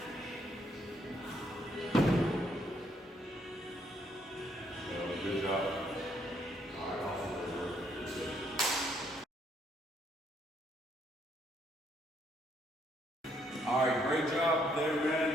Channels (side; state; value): both; normal; correlation 0.71